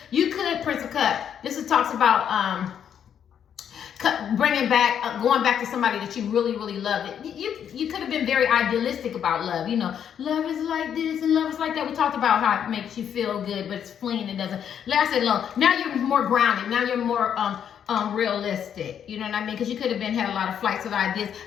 You could, Prince of Cups. This talks about, going back to somebody that you really, really loved. You could have been very idealistic about love. Love is like this and love is like that. We talked about how it makes you feel good, but it's fleeting. It doesn't last that long. Now you're more grounded. Now you're more realistic. You know what I mean? Because you could have had a lot of flights of ideas.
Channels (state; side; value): quieter; right; 8.7 dB